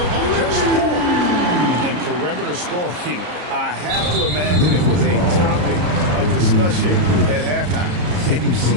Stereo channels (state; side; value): late; left; 33 ms